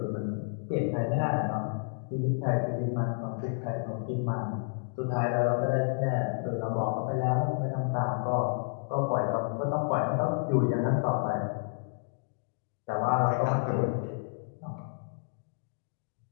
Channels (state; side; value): silent; right; digital silence